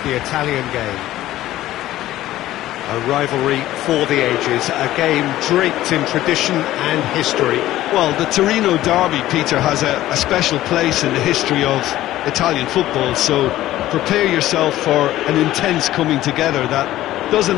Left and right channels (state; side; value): quieter; right; 14.7 dB